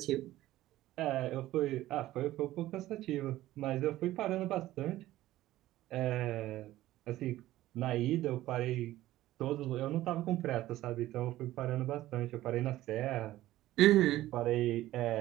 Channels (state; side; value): quieter; left; 15.3 dB